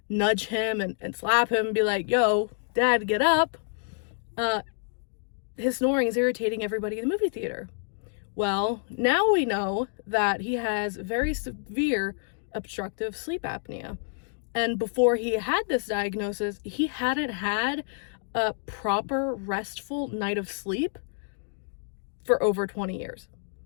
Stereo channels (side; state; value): right; silent; 59 dB below the other